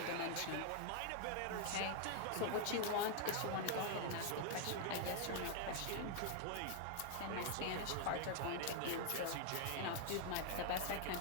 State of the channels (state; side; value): different; both; correlation 0.00